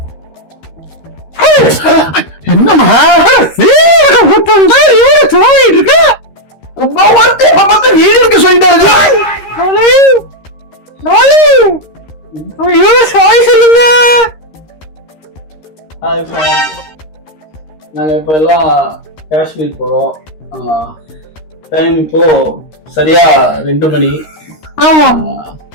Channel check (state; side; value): late; right; 13 ms